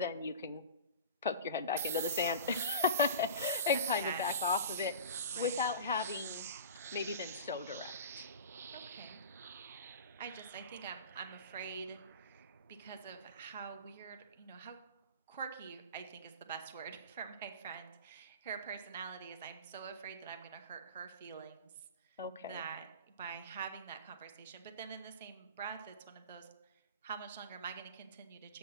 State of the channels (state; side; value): inverted; both; correlation -0.34